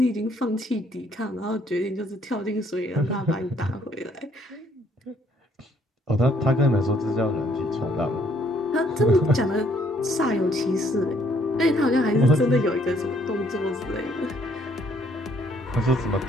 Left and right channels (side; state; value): both; normal; correlation 0.66